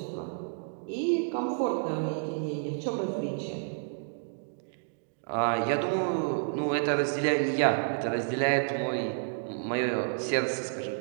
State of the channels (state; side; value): silent; left; digital silence